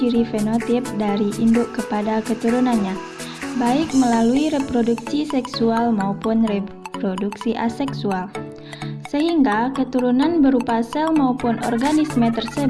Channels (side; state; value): both; identical; correlation 1.00